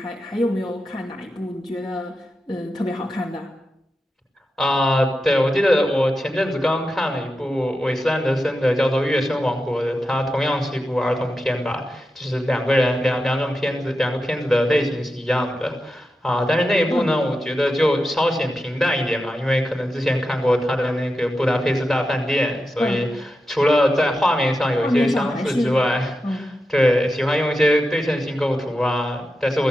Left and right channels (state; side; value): normal; both; correlation 0.90